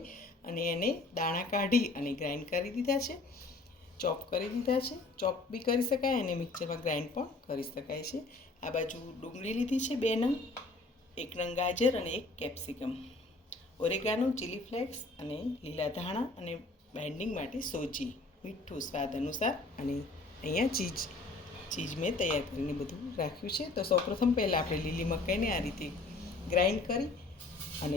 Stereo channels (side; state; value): right; quieter; 3.2 dB